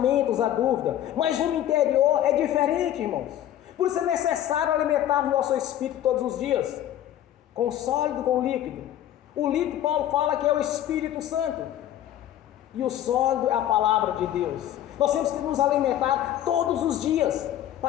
à dúvida, mas o interior é diferente, irmãos. Por isso é necessário alimentar o nosso espírito todos os dias, com sólido, com líquido. O líquido, Paulo fala que é o Espírito Santo, e o sólido é a palavra de Deus. Nós temos que nos alimentar todos os dias,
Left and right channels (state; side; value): quieter; right; 12.0 dB